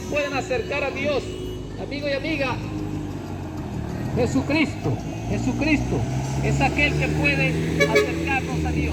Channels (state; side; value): identical; both; correlation 1.00